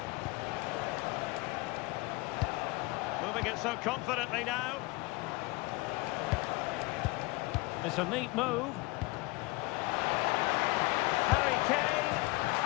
Moving it so confidently now. It's a neat move. Harry Kane.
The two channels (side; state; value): right; quieter; 23.5 dB